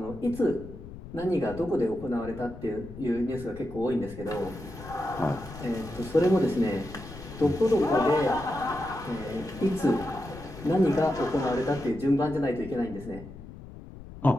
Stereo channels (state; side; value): noise; left; rumble, 14 dB below the sound